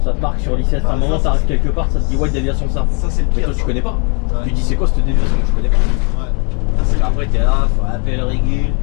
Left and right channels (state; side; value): quieter; right; 37.0 dB